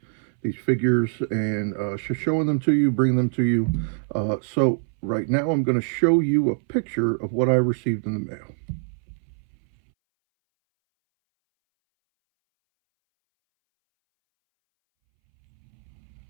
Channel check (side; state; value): left; silent; 62 dB below the other